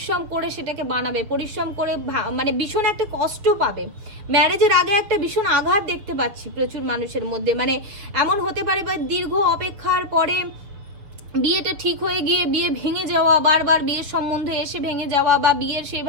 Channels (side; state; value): left; late; 7.1 ms